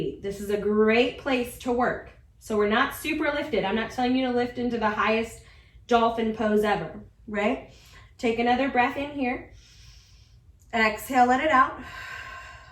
This is a great place to work. So we're not super lifted. I'm not telling you to lift into the highest dolphin pose ever, right? Take another breath in here. Exhale, let it out.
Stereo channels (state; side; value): identical; both; correlation 1.00